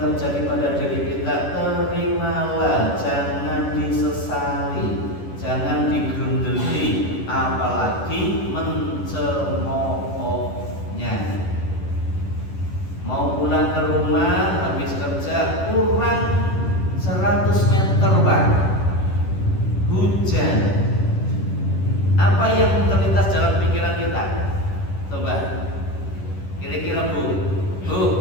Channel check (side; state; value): right; late; 10 ms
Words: pada diri kita, terimalah, jangan disesali, jangan digerundeli, apalagi mencemoohnya. Mau pulang ke rumah habis kerja kurang 100 meter Pak, hujan. Apa yang terlintas dalam pikiran kita? Coba kira-kira Bu,